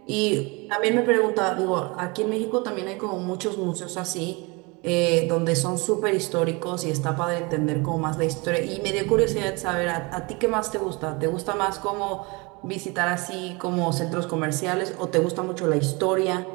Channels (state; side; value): quieter; left; 27.5 dB